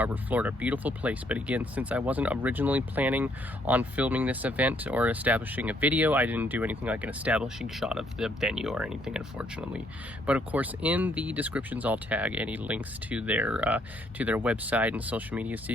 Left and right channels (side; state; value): both; normal; correlation 0.69